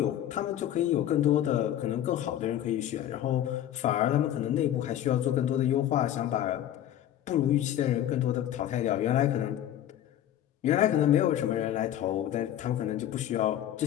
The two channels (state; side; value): quieter; right; 11.7 dB